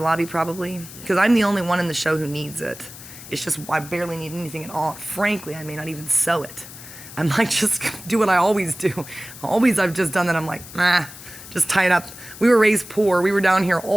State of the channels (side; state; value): left; noise; hiss, 15 dB below the sound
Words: probably, because I'm the only one in the show who needs it. It's just I barely need anything at all. Frankly, I may not even sew it. I might just do what I always do. I've just done that. I'm like, just tie it up. We were raised poor. We were down here